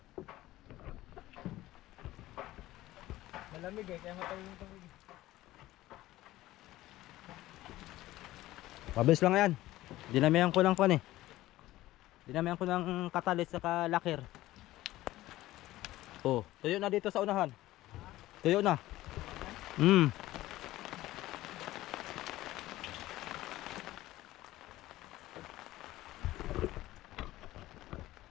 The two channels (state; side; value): quieter; right; 16.3 dB